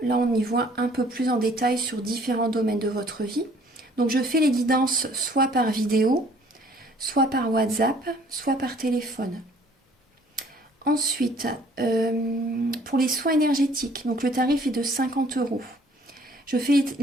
on y voit un peu plus en détail sur différents domaines de votre vie. Donc, je fais les guidances soit par vidéo, soit par WhatsApp, soit par téléphone. Ensuite, pour les soins énergétiques, donc le tarif est de 50 €. Je fais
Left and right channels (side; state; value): both; normal; correlation 0.57